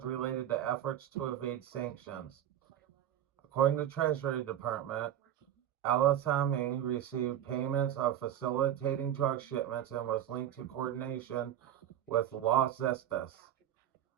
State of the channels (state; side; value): quieter; left; 11.0 dB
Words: related to efforts to evade sanctions. According to the Treasury Department, El-Assami received payments of facilitating drug shipments and was linked to coordination with Los Zetas,